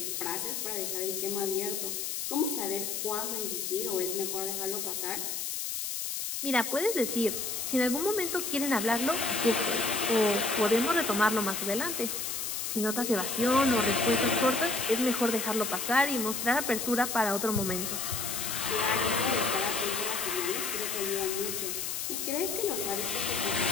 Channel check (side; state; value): left; noise; hiss, 3 dB below the sound